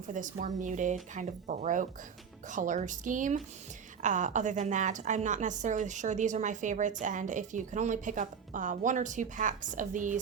for this more muted kind of Baroque color scheme. Other than that, I'm not necessarily sure these are my favorites, and if you can only pick up 1 or 2 packs of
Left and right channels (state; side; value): quieter; left; 6.8 dB